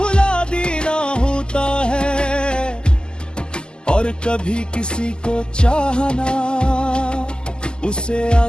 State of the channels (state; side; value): late; right; 0.047 ms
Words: देना होता है, और कभी किसी को चाहना उसे